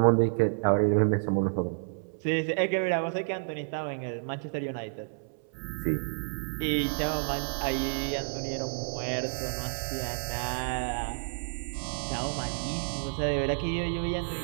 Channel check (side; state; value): left; silent; 58 dB below the other